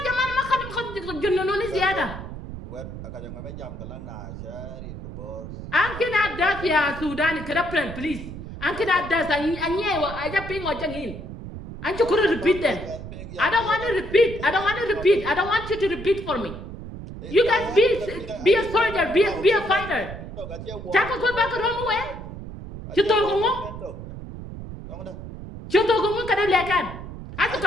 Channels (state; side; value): noise; right; rumble, 11 dB below the sound